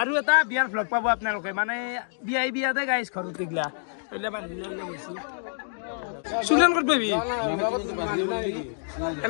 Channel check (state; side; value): silent; right; digital silence